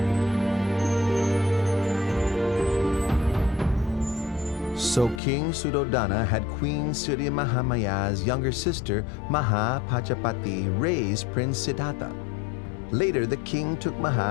So King Suddhodana had Queen Siddhi Mahamaya's younger sister, Mahapajapati, raise Prince Siddhartha. Later, the king took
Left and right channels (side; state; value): right; drops out; at 5.2 s